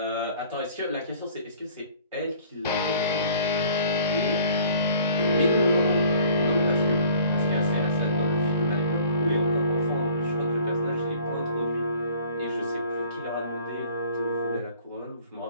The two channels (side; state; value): both; inverted; correlation -0.53